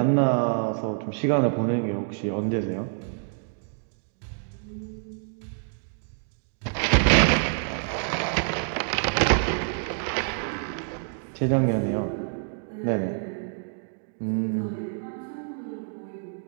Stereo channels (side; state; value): left; silent; 60 dB below the other